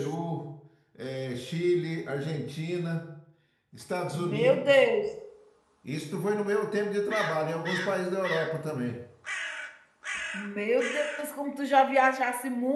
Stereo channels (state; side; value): identical; both; correlation 1.00